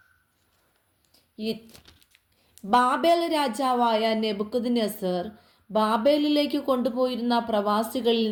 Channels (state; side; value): identical; both; correlation 1.00